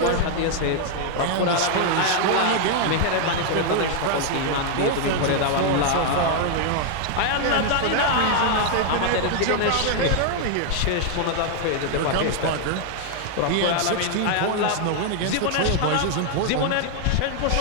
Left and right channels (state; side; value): different; both; correlation 0.00